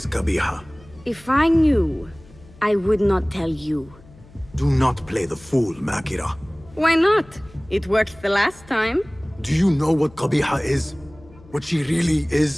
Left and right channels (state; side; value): noise; left; hum, 24 dB below the sound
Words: Qabiha? If I knew, I would not tell you. Do not play the fool, Makira. Why not? It worked the last time. Do you know what Qabiha is? What she really